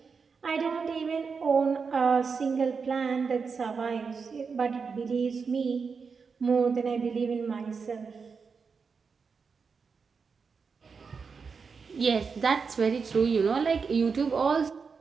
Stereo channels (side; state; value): left; quieter; 5.4 dB